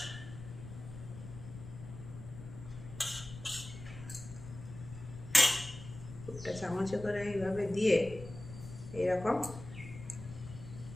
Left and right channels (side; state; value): left; noise; rumble, 13 dB below the sound